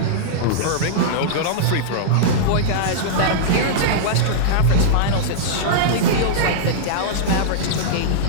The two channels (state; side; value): different; both; correlation -0.02